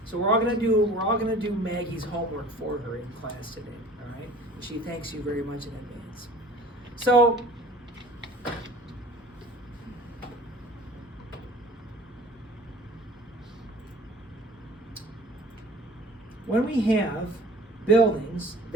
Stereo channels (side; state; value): both; normal; correlation 0.46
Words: So we're all gonna do Maggie's homework for her in class today. All right, and she thanks you very much in advance. So when we have buildings